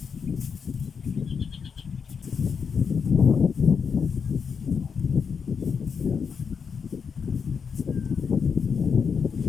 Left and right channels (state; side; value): quieter; right; 6.1 dB